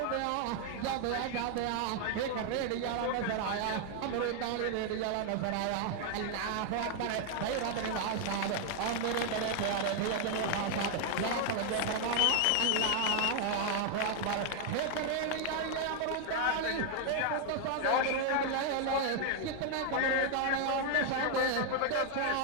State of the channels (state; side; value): different; both; correlation 0.00